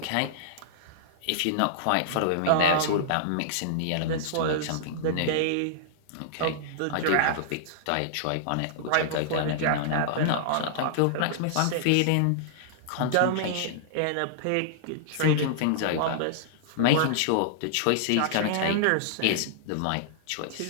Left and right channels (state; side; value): different; both; correlation -0.01